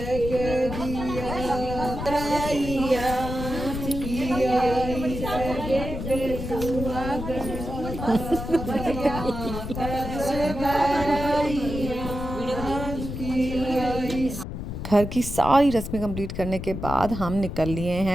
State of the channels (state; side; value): noise; left; rumble, 6 dB below the sound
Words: दिया भराइया घर की सारी रस्में कंप्लीट करने के बाद हम निकल लिए